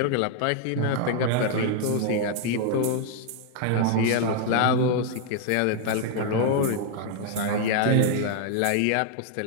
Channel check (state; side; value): different; both; correlation 0.00